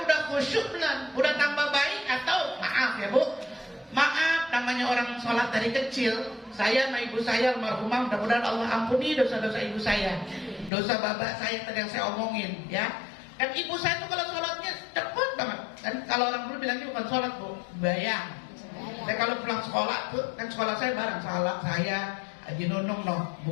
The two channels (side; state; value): right; drops out; at 10.7 s